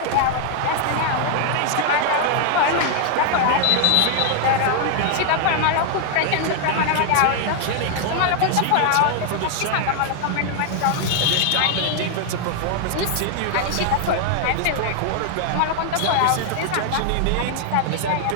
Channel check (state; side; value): different; both; correlation 0.00